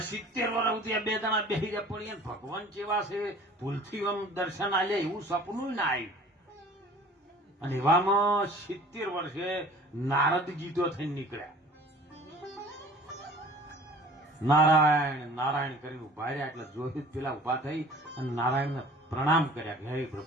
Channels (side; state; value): both; normal; correlation 0.48